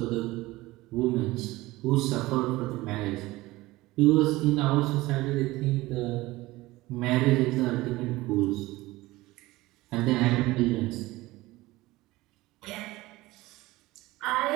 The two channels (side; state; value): left; quieter; 19.2 dB